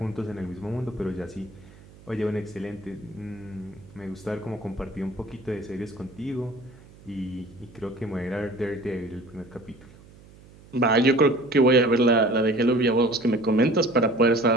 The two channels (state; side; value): noise; right; hum, 23 dB below the sound